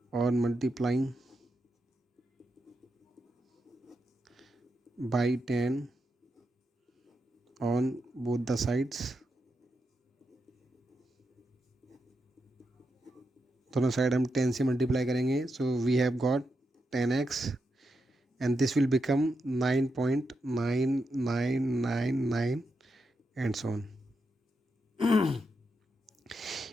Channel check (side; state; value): both; normal; correlation 0.85